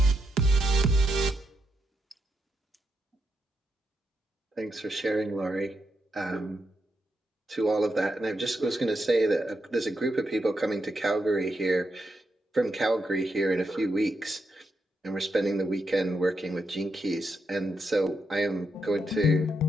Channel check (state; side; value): normal; both; correlation 0.82